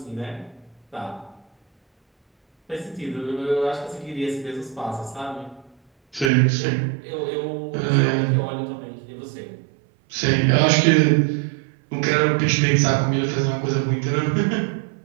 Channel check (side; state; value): left; drops out; at 6.3 s